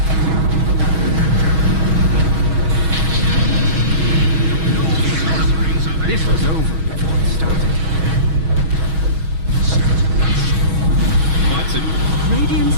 This was over before it started. Bites it. Radiant's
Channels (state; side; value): late; left; 6.3 ms